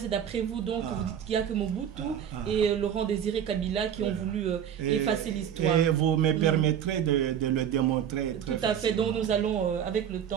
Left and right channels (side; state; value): left; quieter; 9.1 dB